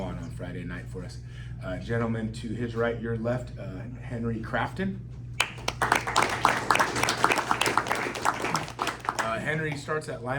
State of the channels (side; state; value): both; identical; correlation 1.00